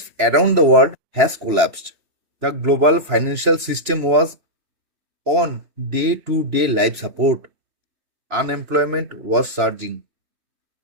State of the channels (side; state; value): left; late; 3.0 ms